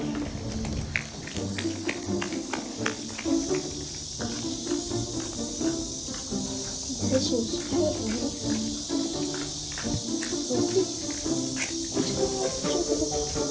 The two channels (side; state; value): both; identical; correlation 1.00